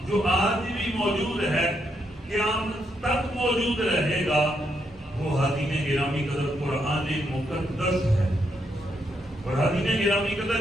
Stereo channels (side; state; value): both; normal; correlation 0.79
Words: جو آج بھی موجود ہے، قیامت تک موجود رہے گا، وہ حاضرین گرامی قدر قرآن مقدس ہے۔ اور حاضرین گرامی